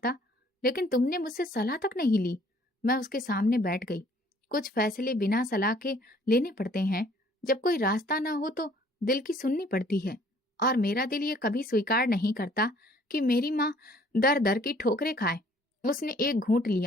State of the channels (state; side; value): normal; both; correlation 0.58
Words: लेकिन तुमने मुझसे सलाह तक नहीं ली। मैं उसके सामने बैठ गई। कुछ फैसले बिना सलाह के लेने पड़ते हैं। जब कोई रास्ता ना हो तो दिल की सुननी पड़ती है, और मेरा दिल ये कभी स्वीकार नहीं करता कि मेरी माँ दर दर की ठोकरें खाए। उसने एक घूंट